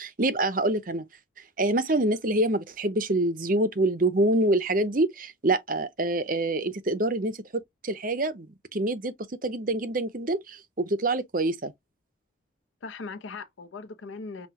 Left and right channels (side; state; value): both; normal; correlation 0.26